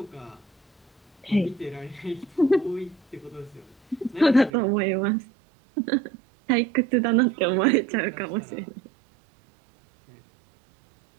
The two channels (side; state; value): left; drops out; at 4.5 s